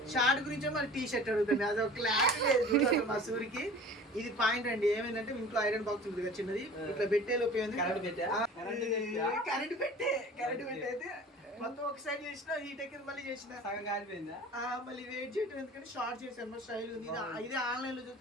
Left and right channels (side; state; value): both; normal; correlation 0.42